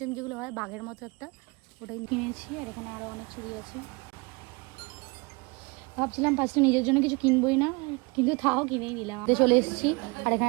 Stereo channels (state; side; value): quieter; left; 28.0 dB